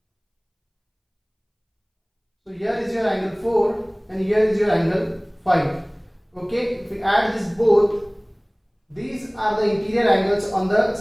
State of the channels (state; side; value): identical; both; correlation 1.00